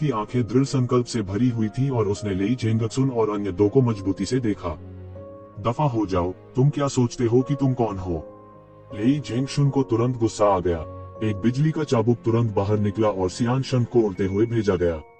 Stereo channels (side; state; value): both; identical; correlation 1.00